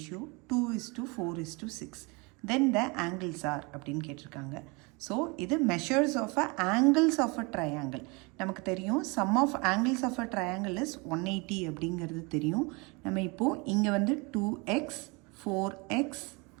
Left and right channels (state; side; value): quieter; left; 28.4 dB